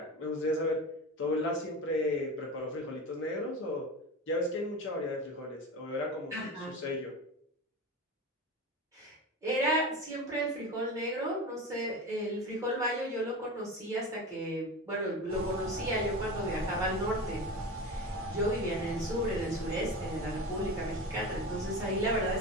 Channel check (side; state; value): both; normal; correlation 0.27